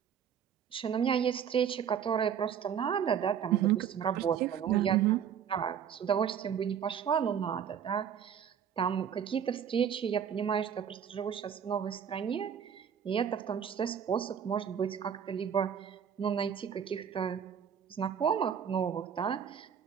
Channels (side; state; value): left; quieter; 8.2 dB